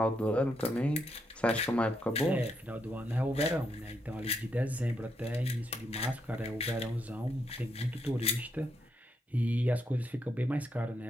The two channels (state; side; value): normal; both; correlation 0.79